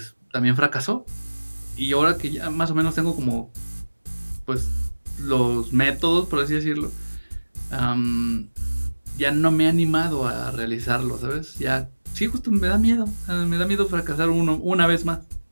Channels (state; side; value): inverted; both; correlation -1.00